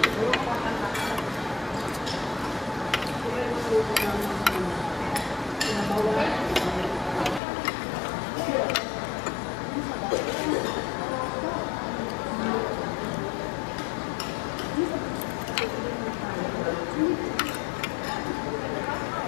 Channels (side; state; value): right; drops out; at 7.4 s